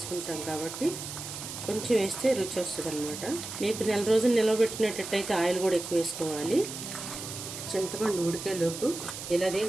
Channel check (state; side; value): noise; right; hiss, 9 dB below the sound